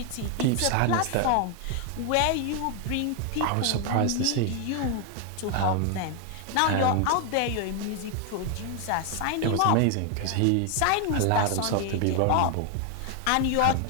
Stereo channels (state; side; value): different; both; correlation 0.01